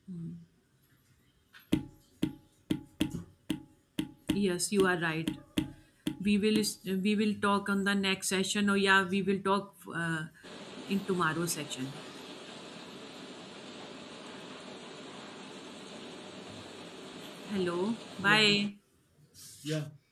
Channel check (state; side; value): identical; both; correlation 1.00